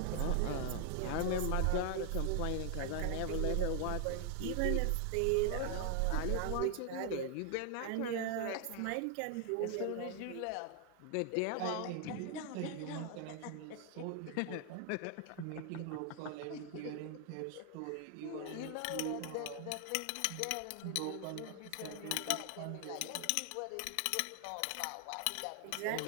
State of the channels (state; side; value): different; both; correlation 0.00